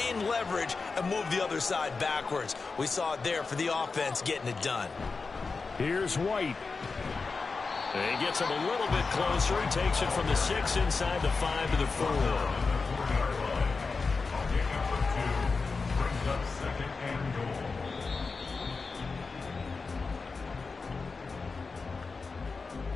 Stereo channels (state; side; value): quieter; right; 4.4 dB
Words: leverage, and move the other side backwards? We saw it there for the offense getting it done. Here's White. He gets him a little bit closer. He takes it from the 6 inside the 5 to the 4.